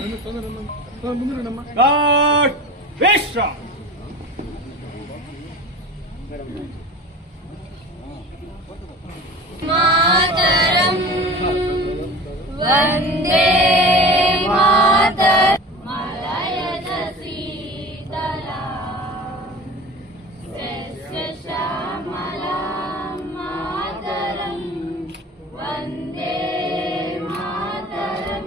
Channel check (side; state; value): both; normal; correlation 0.37